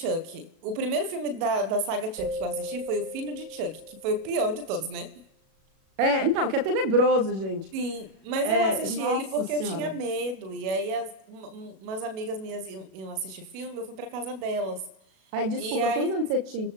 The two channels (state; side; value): late; left; 37 ms